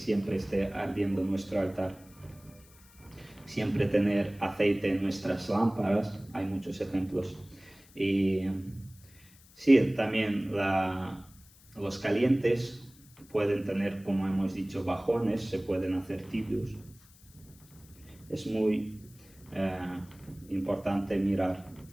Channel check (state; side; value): noise; left; hiss, 26 dB below the sound